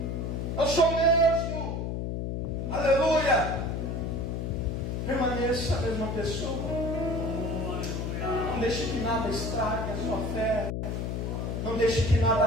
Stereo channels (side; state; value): left; noise; hum, 2 dB below the sound